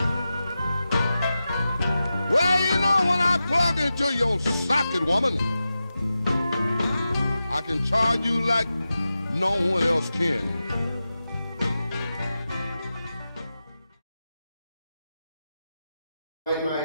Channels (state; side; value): inverted; both; correlation -0.92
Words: Well, you know, when I plug into your socket, woman, I can charge you like no one else can.